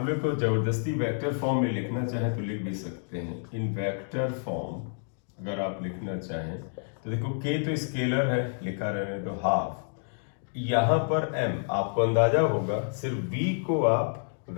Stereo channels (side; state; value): right; silent; digital silence